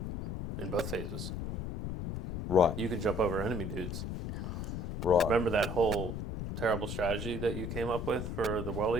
in both phases. Right. You can jump over enemy dudes. Right. Remember that whole terrible strategy that you came up with for the World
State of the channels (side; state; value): left; noise; rumble, 5 dB below the sound